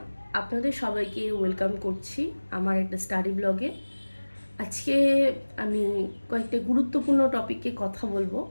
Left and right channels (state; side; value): inverted; both; correlation -1.00